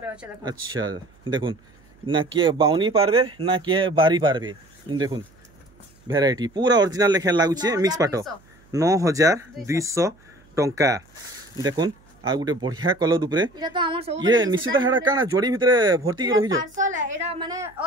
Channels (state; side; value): noise; right; hum, 30 dB below the sound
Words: अछि देखुन अच्छा देखुन ना के बाउनी पारबे ना के बारी पारबे देखुन वैरायटी पूरा ओरिजिनल लेखे लागुचे मिक्स पाटो 9200 टंका देखुन आ गुटे बढ़िया कलर ऊपर इटा तो हमर सब ये निश्चित हेडा काना जोड़ी भितरे भर्ती के रहि जो पार्सल है एडा माने